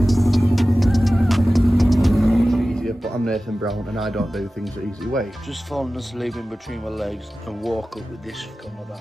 But I'm Nathan Brown and I don't do things the easy way. Just falling asleep in between my legs and walk up with this on my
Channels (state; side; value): normal; both; correlation 0.96